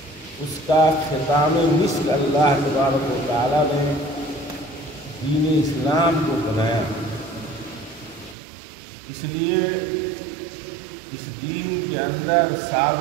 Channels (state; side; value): drops out; left; at 8.3 s